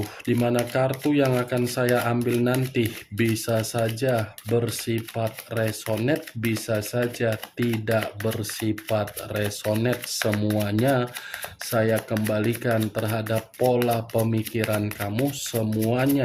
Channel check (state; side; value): identical; both; correlation 1.00